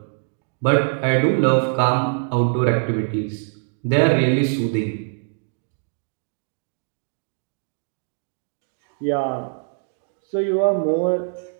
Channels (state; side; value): silent; left; digital silence